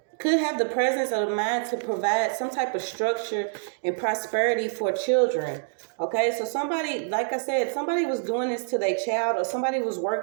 Could have the presence of the mind to provide some type of structure and prosperity for children. Okay, so somebody, like I said, somebody was doing this to their child, or somebody was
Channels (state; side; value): silent; left; digital silence